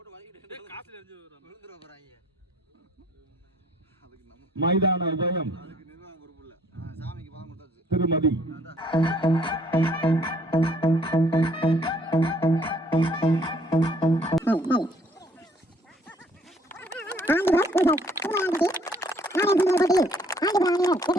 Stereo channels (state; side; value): normal; both; correlation 0.61